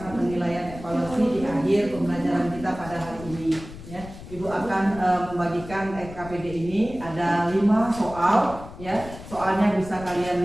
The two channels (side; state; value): left; noise; rumble, 14 dB below the sound